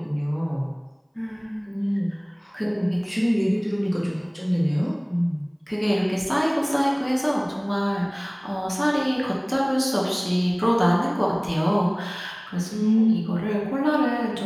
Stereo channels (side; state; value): both; identical; correlation 1.00